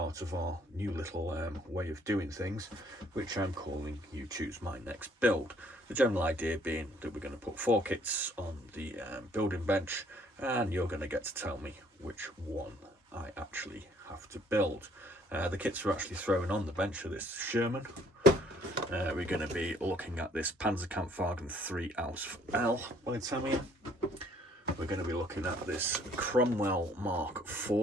of our new little way of doing things, which I'm calling You Choose My Next Build. The general idea being that we're going to put 4 kits on the building bench and you're going to get to tell me which one I actually have to build. The kits are actually thrown on the bench of this Sherman. We're going to be looking at this Panzerkampfwagen 3 Ausf L by Tamiya. We're going to be looking at this Cromwell Mark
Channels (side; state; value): both; normal; correlation 0.62